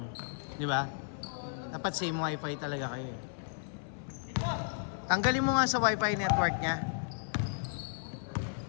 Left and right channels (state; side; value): silent; right; 55 dB below the other